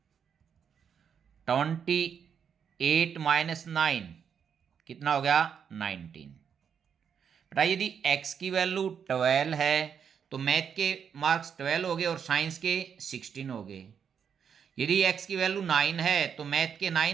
28 minus 9 कितना हो गया, 19। बेटा यदि x की वैल्यू 12 है तो मैथ के मार्क्स 12 हो गए और साइंस के 16 हो गए। यदि x की वैल्यू 9 है तो मैथ के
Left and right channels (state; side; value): quieter; left; 7.4 dB